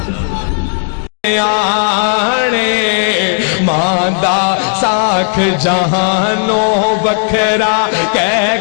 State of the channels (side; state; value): right; silent; digital silence